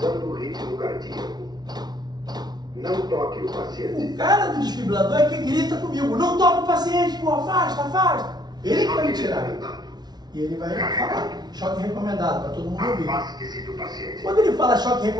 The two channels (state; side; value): late; left; 0.19 ms